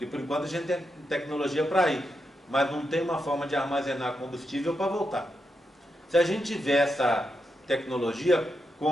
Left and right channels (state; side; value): normal; both; correlation 0.85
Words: por enquanto a gente tem tecnologia para ir, mas não tem uma forma de armazenar combustível para voltar. Se a gente tiver essa tecnologia